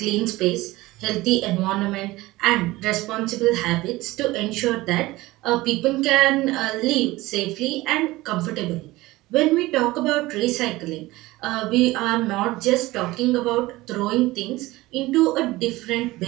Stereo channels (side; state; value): left; quieter; 19.2 dB